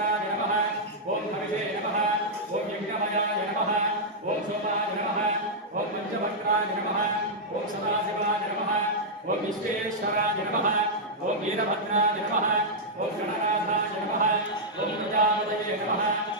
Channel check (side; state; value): both; normal; correlation -0.07